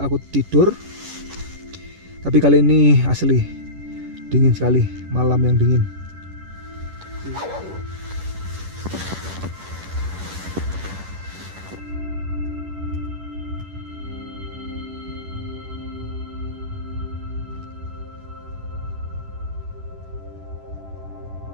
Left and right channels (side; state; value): left; late; 11 ms